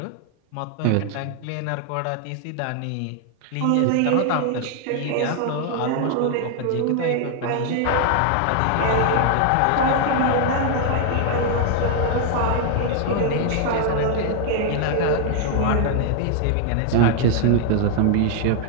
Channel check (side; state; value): both; different; correlation 0.00